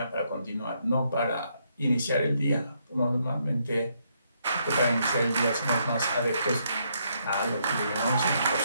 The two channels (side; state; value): both; inverted; correlation -0.74